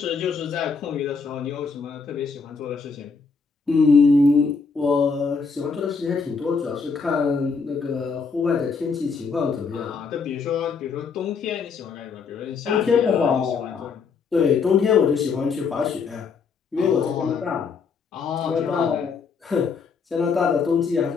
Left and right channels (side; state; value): right; quieter; 5.2 dB